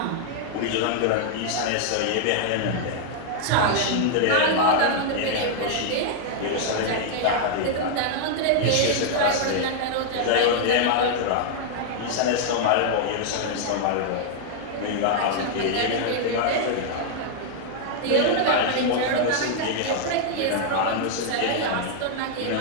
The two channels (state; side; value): different; both; correlation -0.01